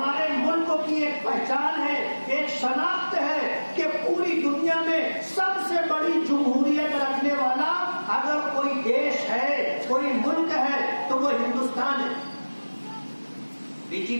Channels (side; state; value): both; inverted; correlation -1.00